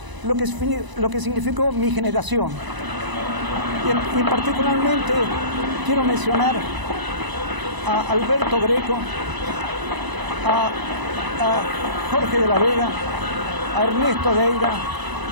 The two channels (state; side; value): late; left; 1.0 ms